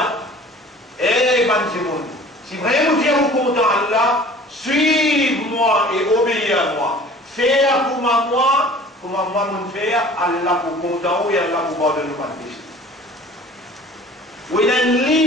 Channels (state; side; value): normal; both; correlation 0.46